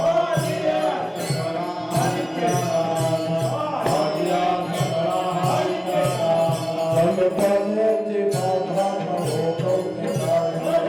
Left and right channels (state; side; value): identical; both; correlation 1.00